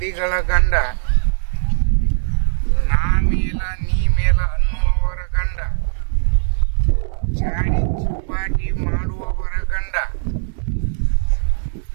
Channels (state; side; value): silent; left; 67 dB below the other